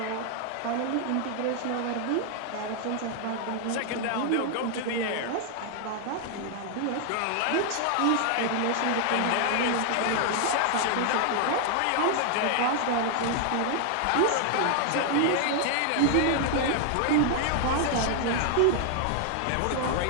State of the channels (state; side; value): different; both; correlation 0.00